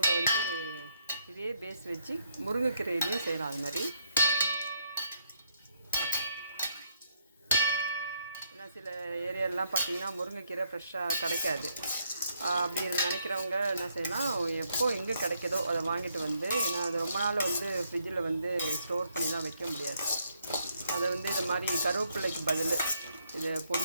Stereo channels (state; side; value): inverted; both; correlation -0.73